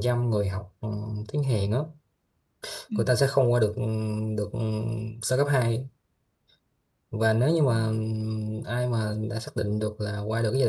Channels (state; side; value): identical; both; correlation 1.00